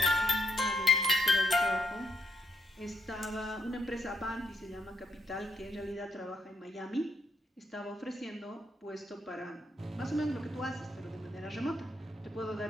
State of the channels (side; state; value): both; normal; correlation 0.77